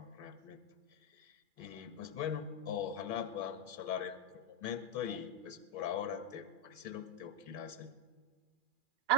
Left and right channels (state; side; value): late; left; 2.4 ms